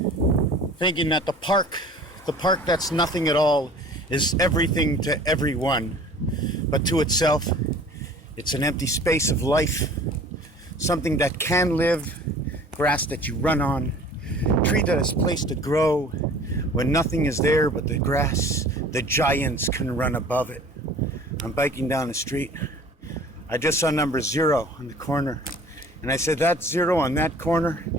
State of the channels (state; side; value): normal; both; correlation 0.47